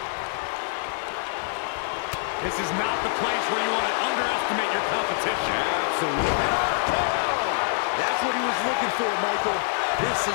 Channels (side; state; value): right; silent; 60 dB below the other